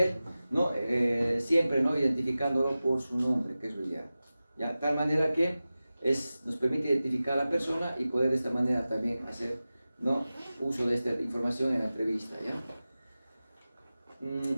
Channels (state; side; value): inverted; both; correlation -0.96